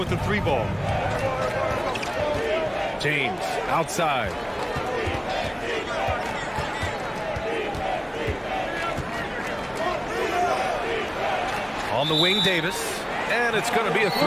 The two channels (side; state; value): both; identical; correlation 1.00